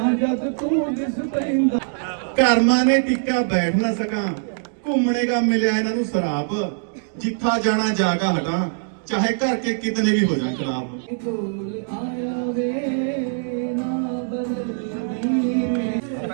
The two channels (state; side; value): silent; left; digital silence